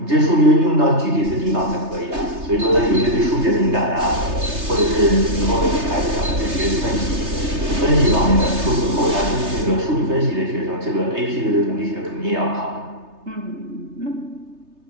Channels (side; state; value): left; late; 3.3 ms